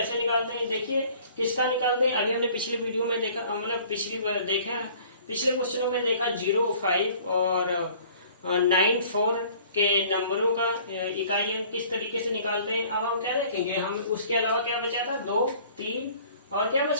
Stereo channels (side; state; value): both; inverted; correlation -0.52